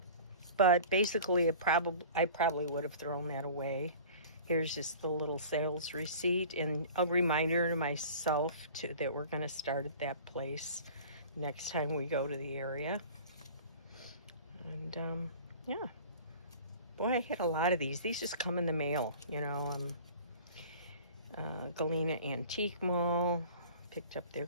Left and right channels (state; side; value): inverted; both; correlation -0.42